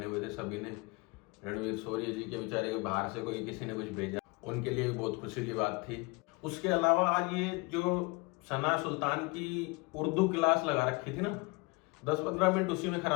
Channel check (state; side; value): quieter; right; 27.2 dB